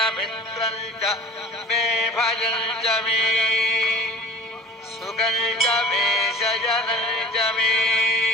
मे भयञ्च मे सुगञ्च मे शयनञ्च मे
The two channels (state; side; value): normal; both; correlation 0.41